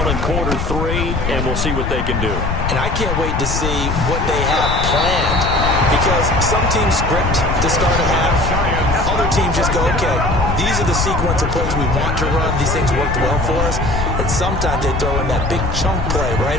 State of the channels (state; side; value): noise; left; rumble, 2 dB below the sound